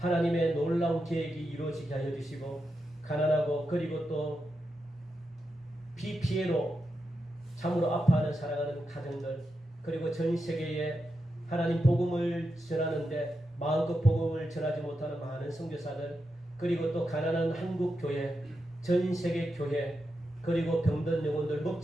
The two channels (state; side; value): normal; both; correlation 0.87